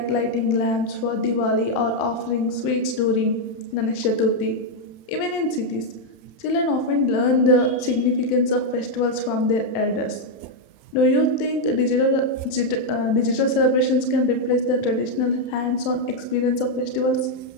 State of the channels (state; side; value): late; right; 31 ms